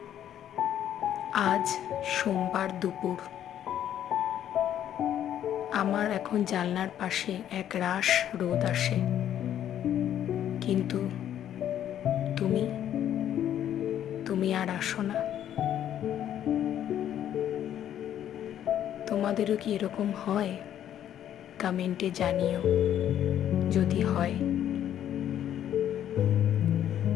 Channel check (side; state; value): right; quieter; 10.7 dB